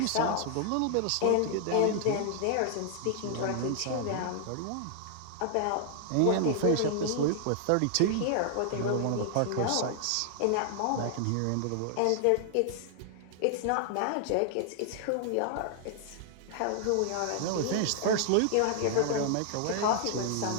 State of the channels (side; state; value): both; different; correlation 0.00